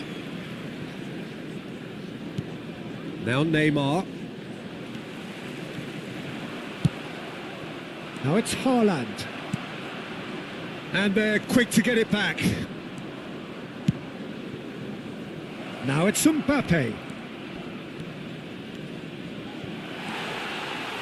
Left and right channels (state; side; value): identical; both; correlation 1.00